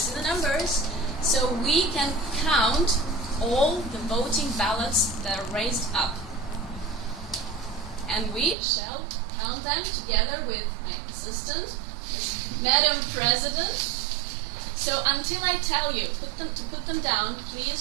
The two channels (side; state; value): left; drops out; at 8.6 s